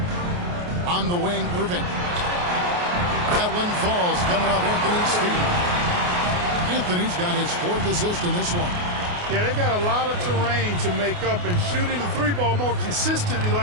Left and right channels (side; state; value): left; late; 28 ms